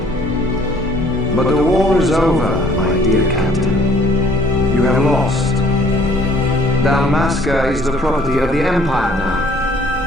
But the war is over, my dear Captain. You have lost. Dalmasca is the property of the Empire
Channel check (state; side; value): normal; both; correlation 0.59